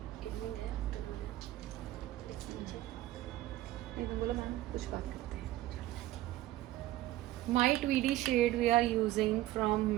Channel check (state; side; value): quieter; left; 15.4 dB